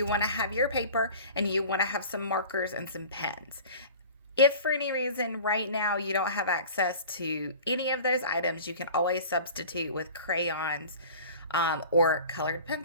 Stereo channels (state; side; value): inverted; both; correlation -0.41